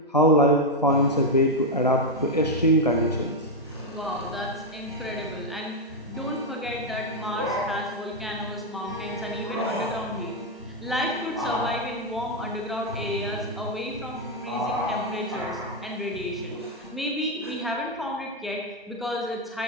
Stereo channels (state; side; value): normal; both; correlation 0.03